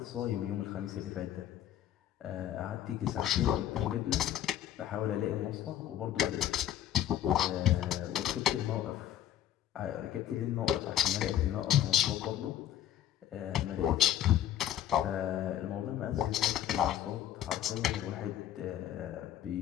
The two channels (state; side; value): quieter; right; 11.3 dB